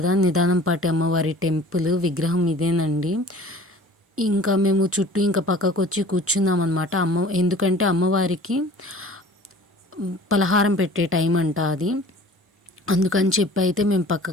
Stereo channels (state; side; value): normal; both; correlation 0.46